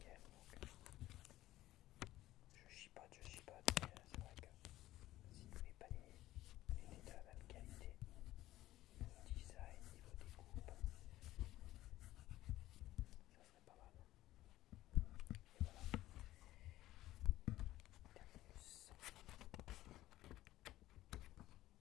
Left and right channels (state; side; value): quieter; right; 15.2 dB